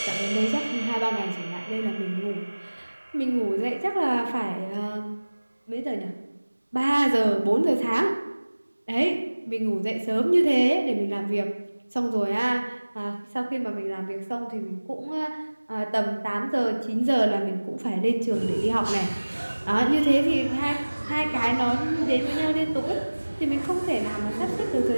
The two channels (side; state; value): both; inverted; correlation -1.00